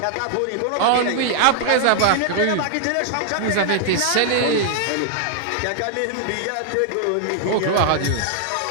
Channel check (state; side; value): different; both; correlation 0.00